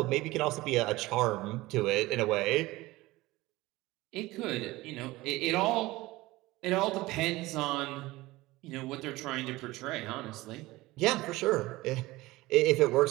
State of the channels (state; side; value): quieter; left; 19.3 dB